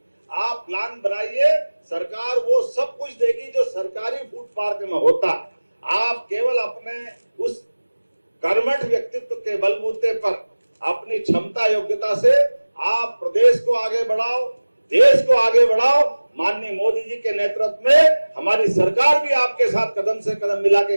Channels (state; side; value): inverted; both; correlation -1.00